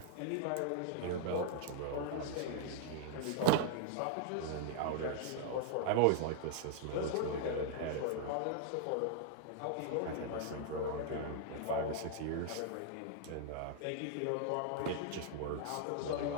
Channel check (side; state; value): both; different; correlation 0.00